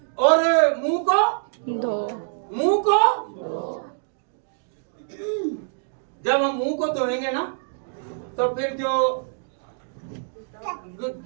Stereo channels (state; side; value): silent; left; digital silence